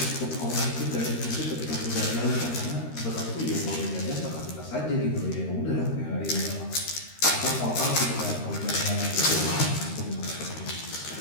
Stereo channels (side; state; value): right; late; 13 ms